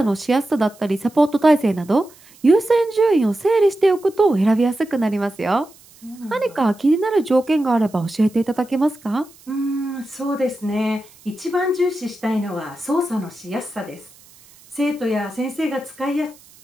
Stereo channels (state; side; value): noise; right; hiss, 26 dB below the sound